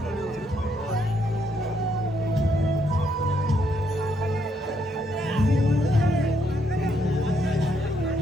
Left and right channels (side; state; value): both; normal; correlation 0.75